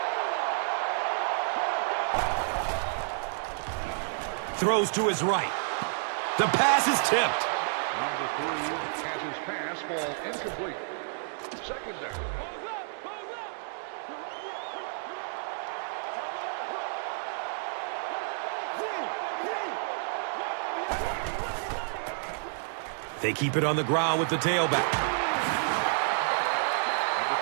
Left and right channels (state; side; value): silent; left; digital silence